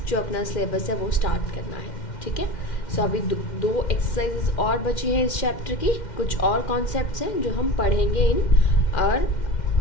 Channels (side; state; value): right; late; 2.1 ms